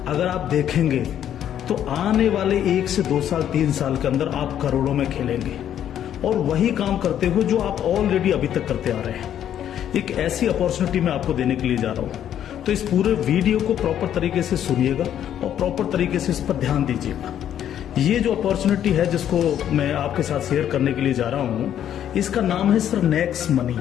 अगर आप देखेंगे तो आने वाले 1 से 2 साल 3 साल के अंदर आप करोड़ों में खेलेंगे और वही काम करते हुए जो आप ऑलरेडी अभी तक करते आ रहे हैं। एक ऐसी अपॉर्चुनिटी मैं आपको देने के लिए जा रहा हूं, तो इस पूरे वीडियो को प्रॉपर तरीके से सुनिएगा और प्रॉपर तरीके से इस पर ध्यान दीजिएगा। ये जो अपॉर्चुनिटी है जिसको मैं आपके साथ शेयर करने के लिए जा रहा हूं, इसका नाम है सर नेक्स्ट मनी।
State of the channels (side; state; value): right; quieter; 10.3 dB